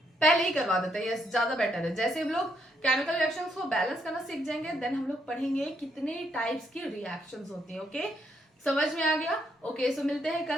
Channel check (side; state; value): both; normal; correlation 0.75